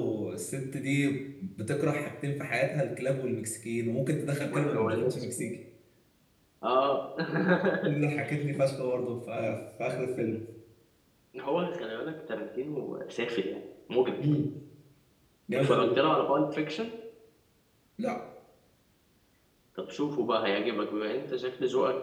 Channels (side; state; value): both; identical; correlation 1.00